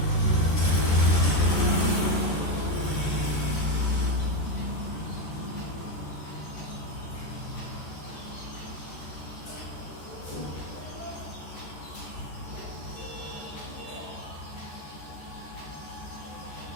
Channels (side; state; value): right; late; 14 ms